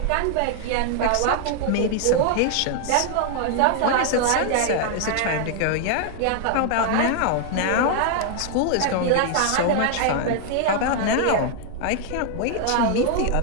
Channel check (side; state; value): both; different; correlation 0.00